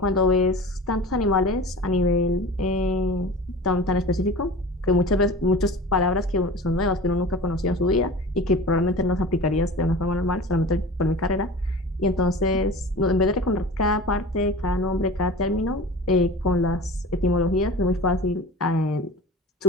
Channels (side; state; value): both; normal; correlation 0.37